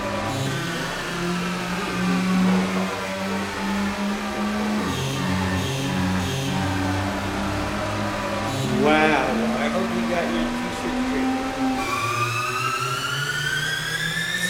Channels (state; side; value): identical; both; correlation 1.00